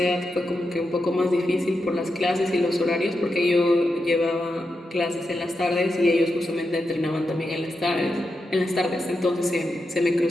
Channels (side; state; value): both; normal; correlation 0.87